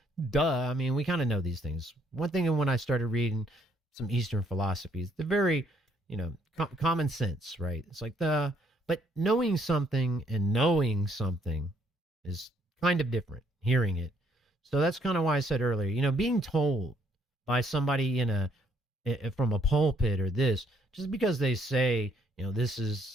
Duh. I mean, we kind of know these things. One thing when I started reading some Eastern philosophies, they're very, common sense, right? It's like but knowing something and knowing something is kind of different, hearing it. So that's kind of why I said earlier, being told by somebody from a pulpit or this, just because they say, this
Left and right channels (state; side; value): normal; both; correlation 0.68